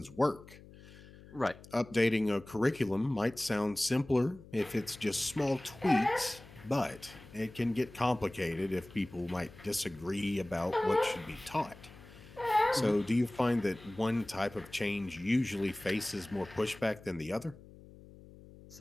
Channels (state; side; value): noise; left; hum, 20 dB below the sound